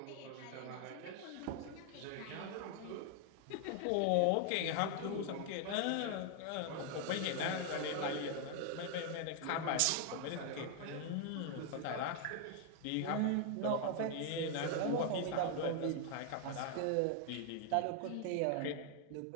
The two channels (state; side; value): different; both; correlation 0.00